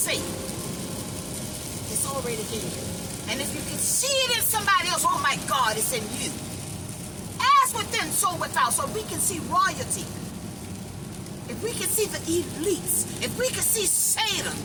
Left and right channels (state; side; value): identical; both; correlation 1.00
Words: it's already in you. And if you can see it in somebody else, oh my God, it's in you. As within, so without. So we can see royalty. If we can see the elites, if we can see Satan,